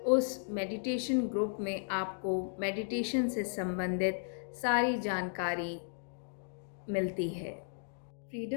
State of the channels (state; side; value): silent; right; digital silence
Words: उस मेडिटेशन ग्रुप में आपको मेडिटेशन से संबंधित सारी जानकारी मिलती है।